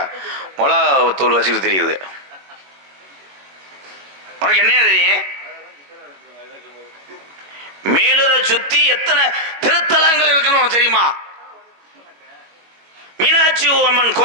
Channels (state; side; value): late; left; 22 ms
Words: மிளகா தூள் வச்சுக்கிட்டு தெரியுது. உனக்கு என்னையா தெரியும்? மேலூரை சுற்றி எத்தனை திருத்தலங்கள் இருக்குன்னு உனக்கு தெரியுமா? மீனாட்சி அம்மன்